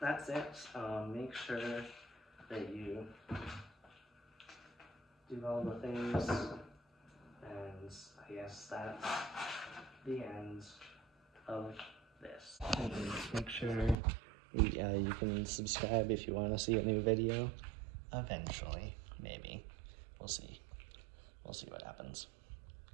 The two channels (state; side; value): drops out; left; at 14.0 s